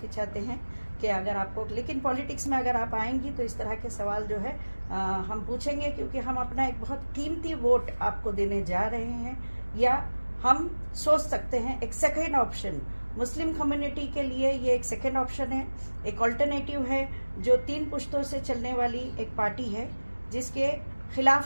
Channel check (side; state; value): both; inverted; correlation -1.00